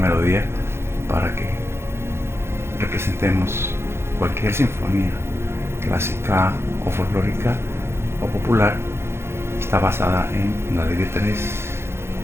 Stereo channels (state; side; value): late; left; 0.12 ms